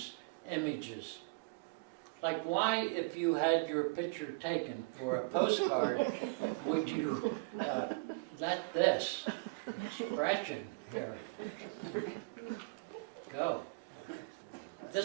images. Like, why, if you had your picture taken for a postcard, would you let this expression here go?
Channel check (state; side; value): quieter; left; 29.7 dB